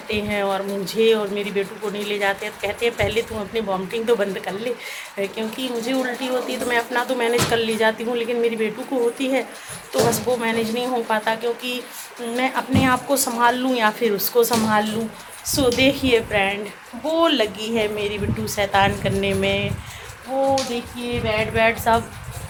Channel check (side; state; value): both; identical; correlation 1.00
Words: हैं और मुझे और मेरी बेटू को नहीं ले जाते हैं। तो कहते हैं पहले तुम अपनी वॉमिटिंग तो बंद कर ले, क्योंकि मुझे उल्टी होती है तो मैं अपना तो मैनेज कर ली जाती हूँ, लेकिन मेरी बेटू को होती है तो बस वो मैनेज नहीं हो पाता, क्योंकि मैं अपने आप को संभाल लूँ या फिर उसको संभाल लूँ। सो देखिए फ्रेंड, वो लगी है मेरी बेटू शैतान करने में। वो देखिए बेड सब